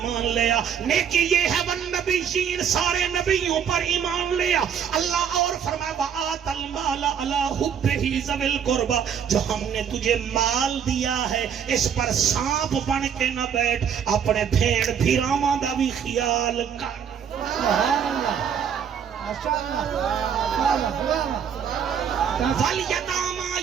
لیا نیکی یہ ہے والنبیین سارے نبیوں پر ایمان لیا اللہ اور فرمایا وآت المال علی حبہ ذوی القربى جو ہم نے تجھے مال دیا ہے اس پر سانپ بن کے نہ بیٹھ اپنے بھیڑ بھیراواں دا بھی خیال کر سبحان اللہ ماشاءاللہ والیتامى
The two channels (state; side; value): quieter; left; 7.9 dB